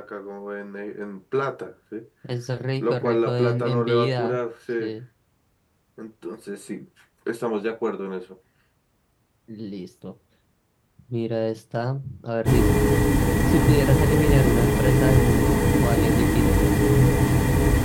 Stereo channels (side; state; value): both; identical; correlation 1.00